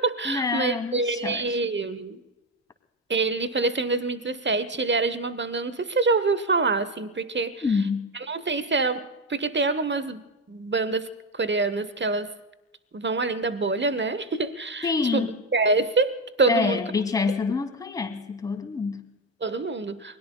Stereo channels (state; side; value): normal; both; correlation 0.11